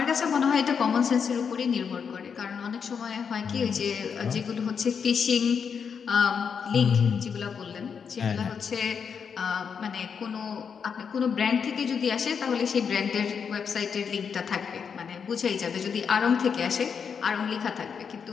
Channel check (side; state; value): right; quieter; 6.6 dB